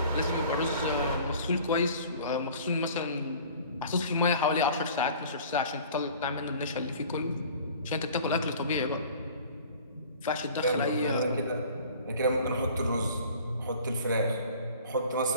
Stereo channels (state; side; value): inverted; both; correlation -0.47